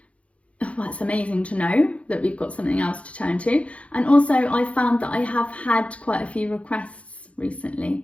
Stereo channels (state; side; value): late; right; 0.063 ms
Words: it's amazing to know that we've got something else to turn to. And also I found that I have had quite a few requests